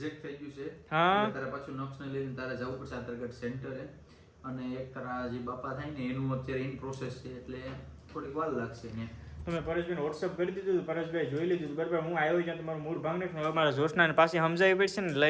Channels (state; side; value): identical; both; correlation 1.00